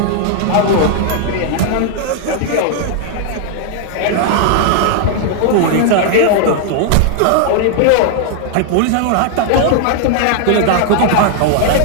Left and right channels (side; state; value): both; different; correlation 0.00